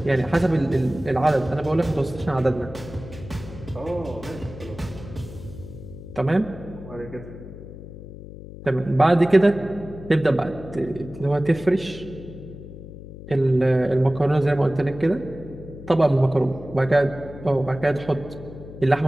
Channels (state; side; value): noise; left; hum, 14 dB below the sound